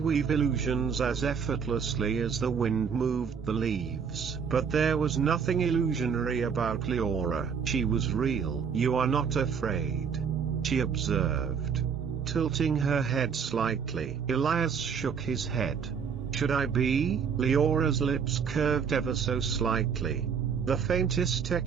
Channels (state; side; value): quieter; left; 6.6 dB